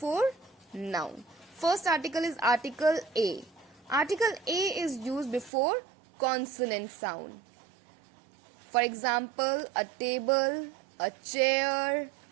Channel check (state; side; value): drops out; left; at 5.5 s